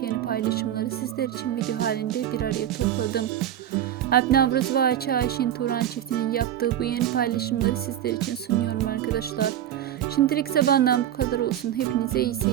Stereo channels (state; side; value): quieter; left; 10.9 dB